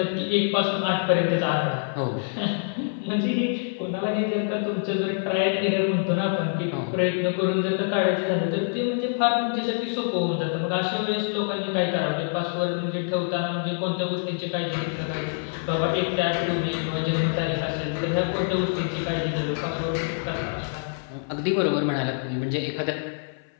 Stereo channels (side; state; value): right; silent; 56 dB below the other